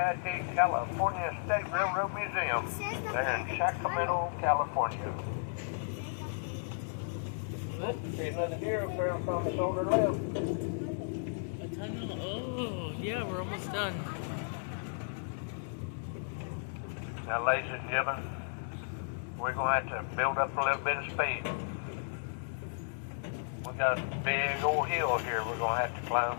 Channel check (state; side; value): silent; right; digital silence